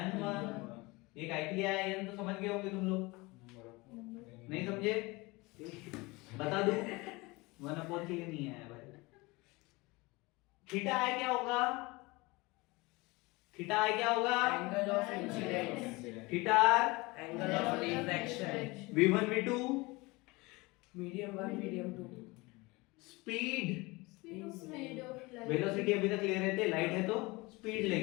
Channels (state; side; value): quieter; right; 23.8 dB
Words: n1। ये काय के लिए आया n तो समझ गए होंगे तुम लोग, नहीं समझे? बता दूं, 1 अपॉन के लिए नहीं आया भाई। थीटा है क्या होगा? थीटा है क्या होगा? Angle of incidence. Theta Angle of refraction. v1 v2 Medium 1, medium 2. Speed Speed of light. Velocity अभी तक ले रहे थे, लाइट है तो स्पीड